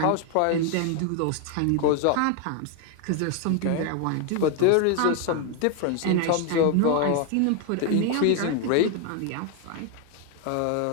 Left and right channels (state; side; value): different; both; correlation 0.01